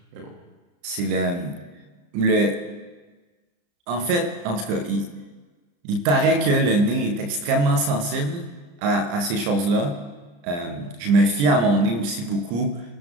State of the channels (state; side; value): late; left; 34 ms